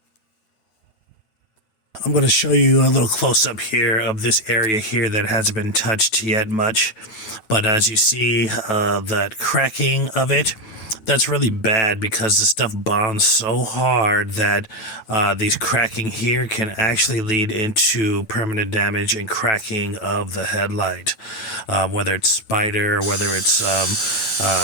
I'm going to show you a little close-up here of this area here that hasn't been touched yet much. But as you see, that cracking of it, that's really bad, because the stuff bonds so hard that these cracking here can actually lead into permanent damage and cracking of the headlight. Whether it's spider, or whether it's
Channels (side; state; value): right; late; 9.2 ms